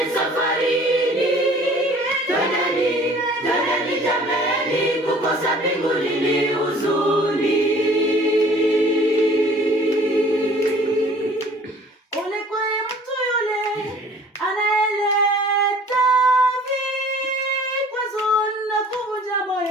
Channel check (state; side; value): normal; both; correlation 0.51